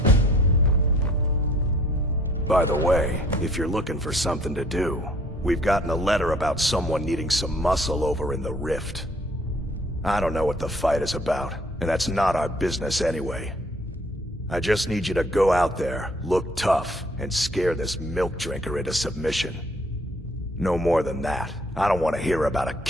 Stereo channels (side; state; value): both; normal; correlation 0.59